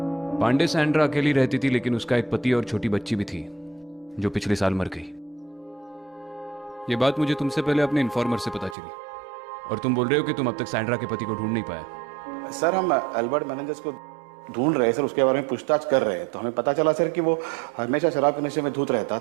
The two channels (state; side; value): drops out; left; at 8.8 s